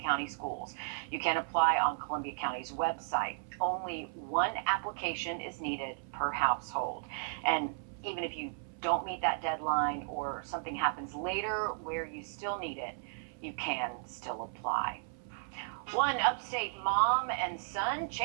County Schools. You can apply on Columbia County's website. Only one application is needed per household. And even if you don't meet that deadline or something happens later where you still need it, you can still apply. One upstate mom and son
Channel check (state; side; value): silent; left; 55 dB below the other